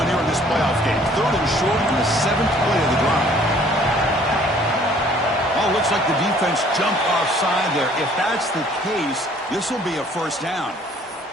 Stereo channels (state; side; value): normal; both; correlation 0.57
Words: here in this playoff game. Third and short on the 7th play of the drive. Oh, looks like the defense jumped offside there. If that's the case, this will be a first down.